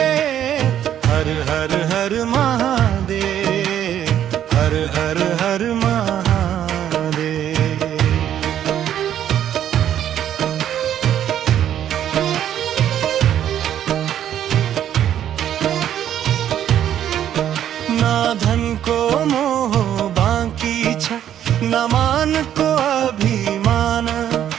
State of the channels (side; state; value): left; quieter; 10.5 dB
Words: हर हर हर महादेव, हर हर हर महादेव। ना धन को मोह बाकी छ, न मान को अभिमान।